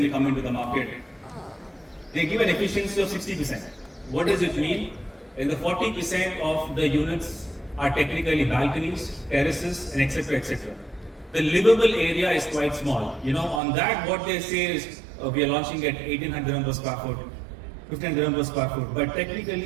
come into the market, they give an efficiency of 60%. What does it mean? In the 40% of the units are technically balconies, terraces, and etc. etc. The livable area is quite small. You know, on that, what they say is we are launching at 1800 per square foot, 1500 per square foot. But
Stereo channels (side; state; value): left; drops out; at 13.6 s